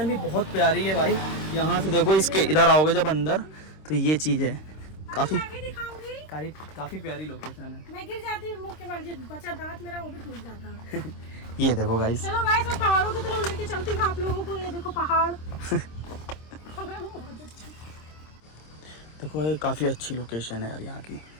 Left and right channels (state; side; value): late; right; 26 ms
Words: भी बहुत प्यारी है भाई। यहाँ से देखो, इसके इधर आओगे जब अंदर तो ये चीज़ है, काफ़ी मैं भी दिखाऊंगी। काफ़ी प्यारी लोकेशन है। मैं गिर जाती हूँ मुँह के बल, जो बचा दांत मेरा वो भी टूट जाता है। ये देखो गाइस, चलो गाइस मैं पहाड़ों की तरफ लेके चलती हूँ आप लोगों को। ये देखो पहाड़। देखो ये काफ़ी अच्छी लोकेशन है यार, यहाँ की